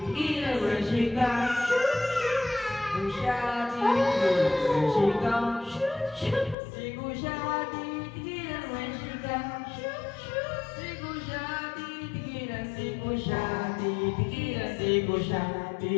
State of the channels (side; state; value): right; drops out; at 6.6 s